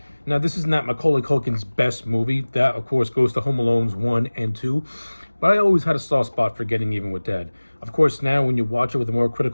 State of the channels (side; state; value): both; inverted; correlation -1.00